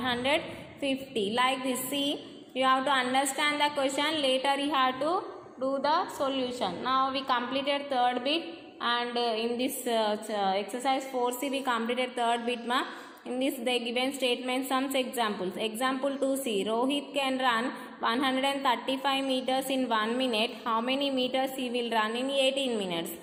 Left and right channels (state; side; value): identical; both; correlation 1.00